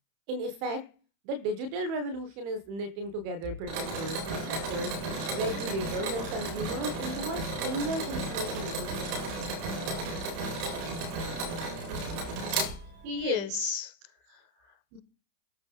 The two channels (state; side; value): late; left; 31 ms